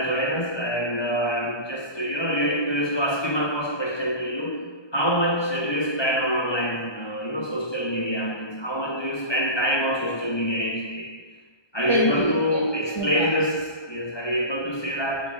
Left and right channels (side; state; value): right; late; 1.2 ms